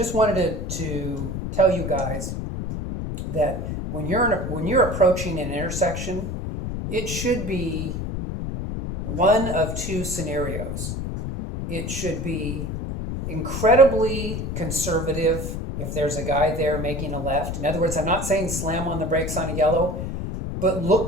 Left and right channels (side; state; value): left; noise; rumble, 4 dB below the sound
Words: wanted to tell you guys that when you're approaching an intersection, it should be one of two scenarios. It should be incredibly conservative if there's a guy there making a left. In other words, I'm not saying slam on the brakes on a yellow, but